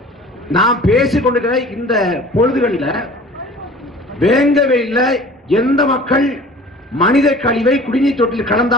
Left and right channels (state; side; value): normal; both; correlation 0.45